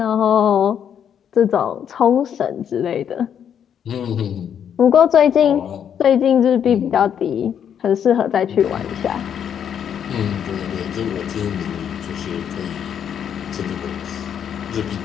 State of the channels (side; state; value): right; quieter; 8.6 dB